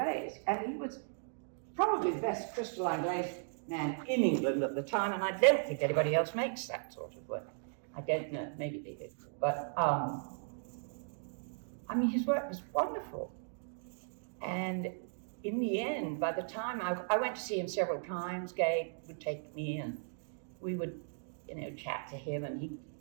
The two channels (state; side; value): silent; left; digital silence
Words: And he was probably the best crystalline glaze man in England at the time, and I don't think anybody else makes that sort of work. I don't know, maybe they did. But, his work was wonderful. And in the end, by the time I went to see him several times, Gabe would take me and we would, chat to him. And